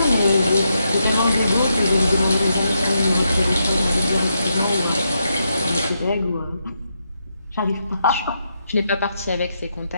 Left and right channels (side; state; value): both; inverted; correlation -0.82